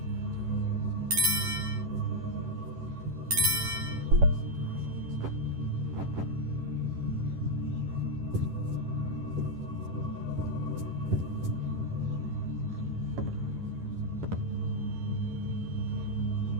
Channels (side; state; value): left; late; 11 ms